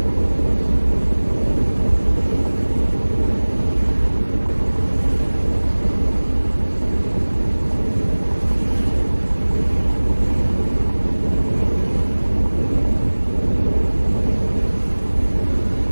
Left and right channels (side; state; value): both; inverted; correlation -1.00